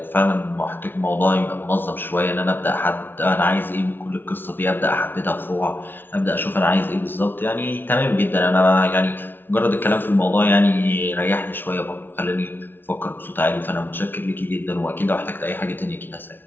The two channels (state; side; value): late; right; 0.098 ms